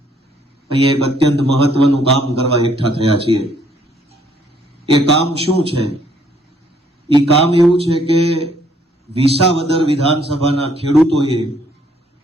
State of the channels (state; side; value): normal; both; correlation 0.66